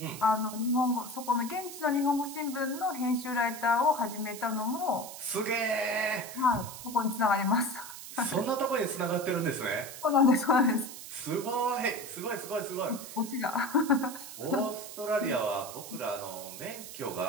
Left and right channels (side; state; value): right; noise; hiss, 12 dB below the sound